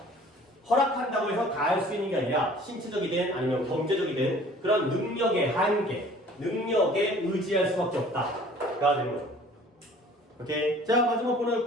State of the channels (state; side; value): normal; both; correlation 0.50